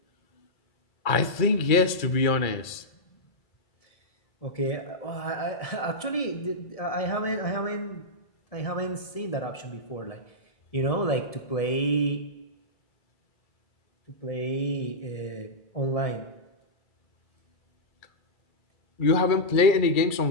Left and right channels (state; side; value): late; right; 2.3 ms